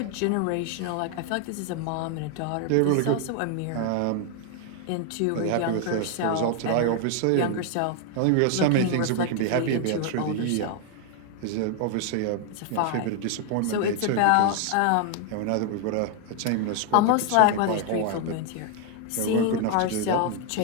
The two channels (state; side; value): different; both; correlation 0.00